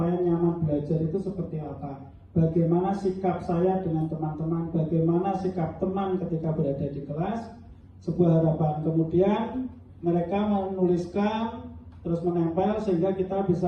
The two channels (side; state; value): both; identical; correlation 1.00